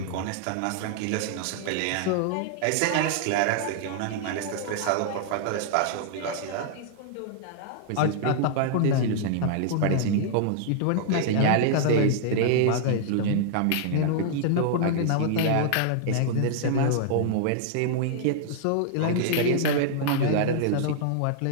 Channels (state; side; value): different; both; correlation -0.01